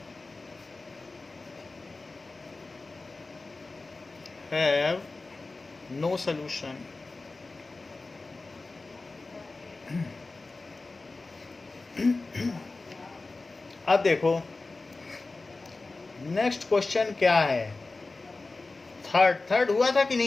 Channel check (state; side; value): quieter; right; 3.5 dB